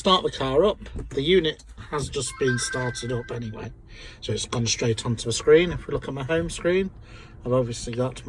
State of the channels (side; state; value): both; identical; correlation 1.00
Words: the car up. The unit has just been started up anyway, so it's gone straight onto the screen. If we look at my home screen, I've obviously got